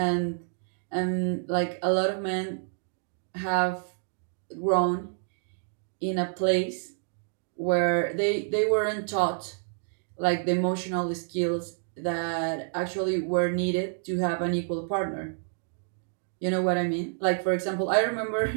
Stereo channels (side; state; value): left; silent; digital silence